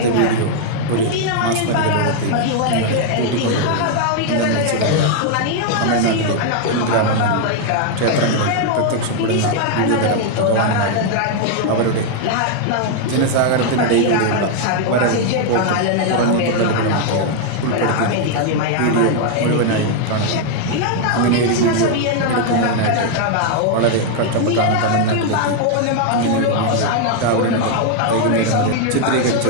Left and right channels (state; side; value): different; both; correlation 0.00